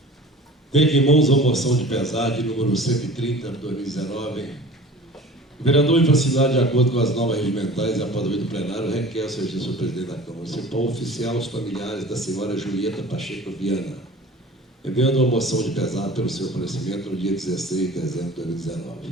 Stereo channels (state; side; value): normal; both; correlation 0.42